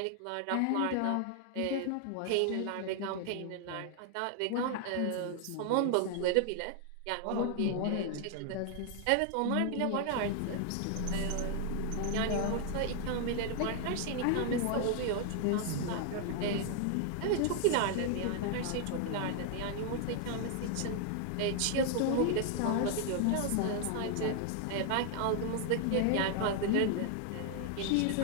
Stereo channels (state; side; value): different; both; correlation 0.00